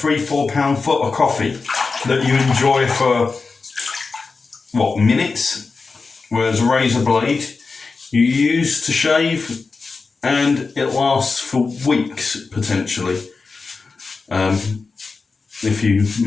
foot of coffee that you enjoy for minutes, whereas a razor blade you use to shave and it lasts for weeks potentially, if you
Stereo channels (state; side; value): quieter; right; 4.3 dB